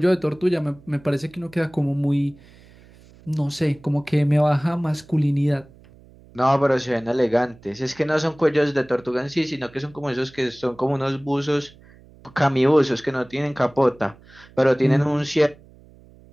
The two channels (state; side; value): noise; right; hum, 25 dB below the sound